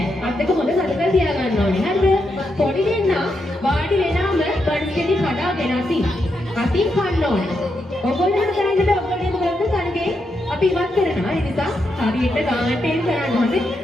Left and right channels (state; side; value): normal; both; correlation 0.83